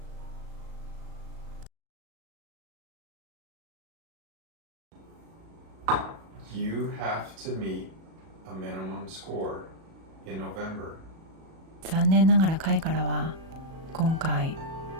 You have to meet a minimum score in November. 残念ながら会からは今回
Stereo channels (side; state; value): left; late; 37 ms